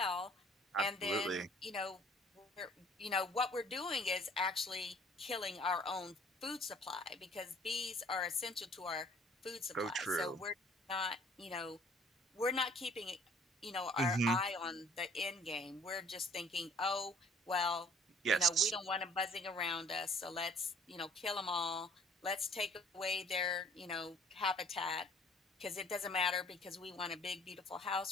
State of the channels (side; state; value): both; normal; correlation 0.55